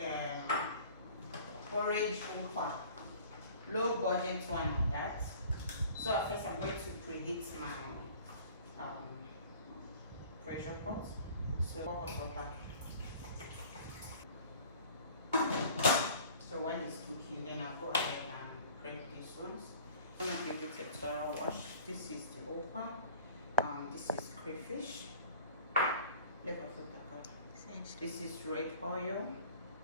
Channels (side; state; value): both; inverted; correlation -0.47